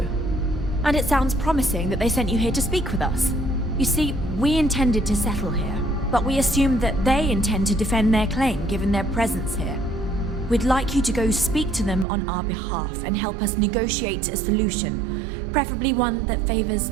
And it sounds promising that they sent you here to speak with us. You see, we intended to settle here, but we assumed that they intend to defend their claim given their presence here. We'd like you to go speak to them on our behalf and help us negotiate a solution, preferably one that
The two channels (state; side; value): drops out; left; at 12.1 s